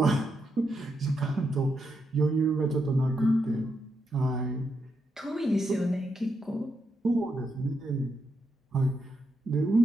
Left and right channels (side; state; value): both; normal; correlation 0.82